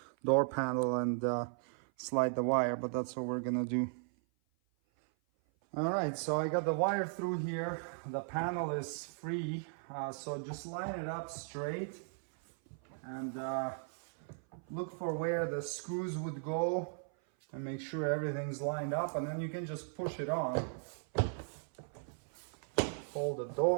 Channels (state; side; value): silent; left; 53 dB below the other